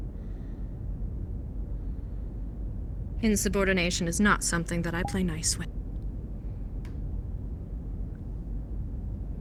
Insubordination is not something that I play nice with.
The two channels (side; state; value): both; identical; correlation 1.00